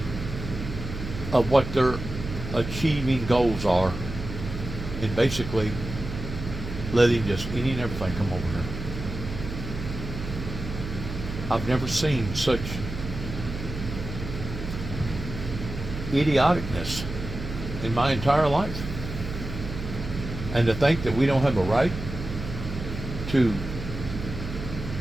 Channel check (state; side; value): noise; right; hum, 8 dB below the sound